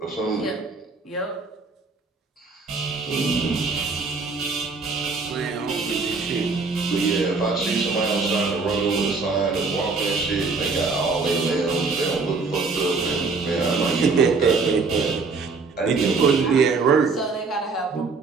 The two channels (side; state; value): left; quieter; 4.3 dB